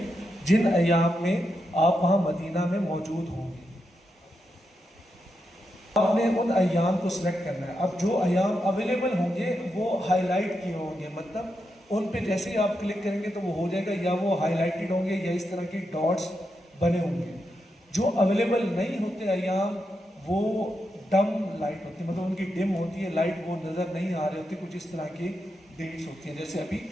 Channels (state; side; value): normal; both; correlation 0.85